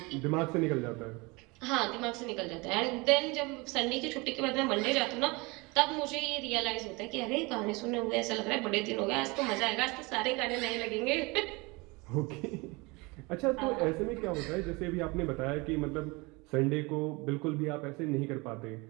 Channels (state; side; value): quieter; left; 25.9 dB